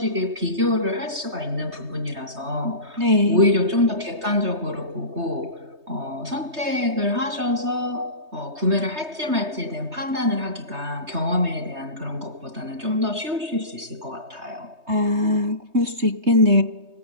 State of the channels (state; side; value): late; left; 3.2 ms